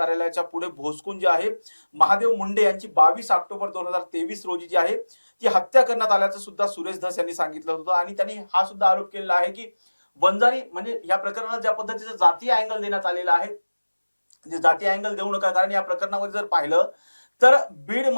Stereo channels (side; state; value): both; inverted; correlation -1.00